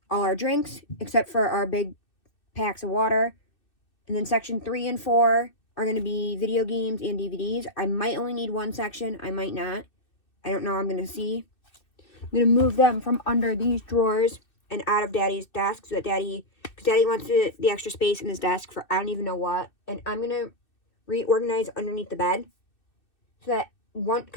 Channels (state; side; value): late; right; 2.6 ms